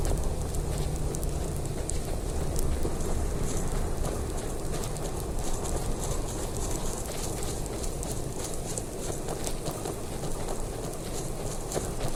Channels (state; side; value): identical; both; correlation 1.00